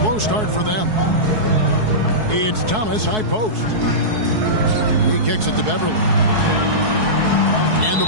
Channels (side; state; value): left; late; 4.7 ms